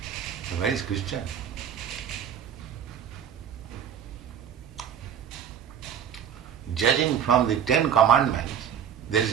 Where is Christian? Judging from the 10 commandments, there is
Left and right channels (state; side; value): quieter; left; 8.6 dB